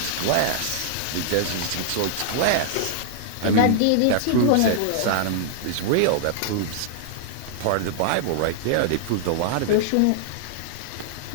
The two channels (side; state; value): both; different; correlation -0.01